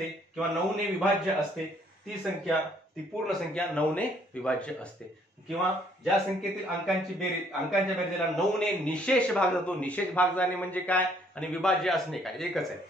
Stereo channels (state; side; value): normal; both; correlation 0.64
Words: किंवा 9 ने विभाज्य असते ती संख्या, ती पूर्ण संख्या 9 ने विभाज्य असते. किंवा ज्या संख्येतील अंकांची बेरीज, अंकांच्या बेरजेला 9 ने निशेष भाग जातो. निशेष भाग जाणे म्हणजे काय आणि विभाज्य असणे काय एकच आहे.